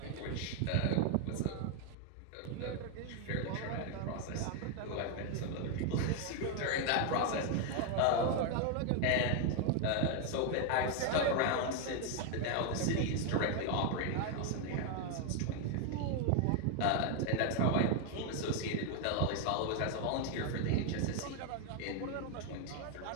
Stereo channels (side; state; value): both; different; correlation 0.01